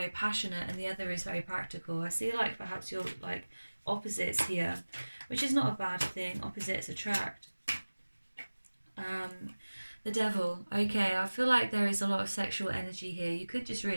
passionate, and the other is very practical. I see like perhaps you're like opposites here, which is not a bad thing. Opposites attract. The Devil. Okay, I feel like there is a lot of sexual energy here. You could just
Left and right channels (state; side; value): inverted; both; correlation -1.00